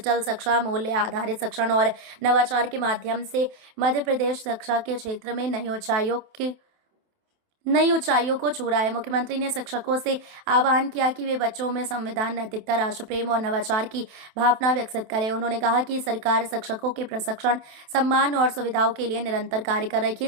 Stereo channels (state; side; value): late; left; 28 ms